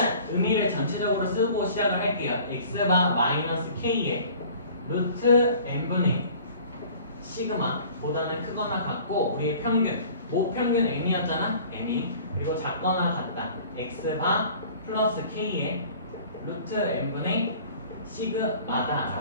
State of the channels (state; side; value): inverted; both; correlation -0.48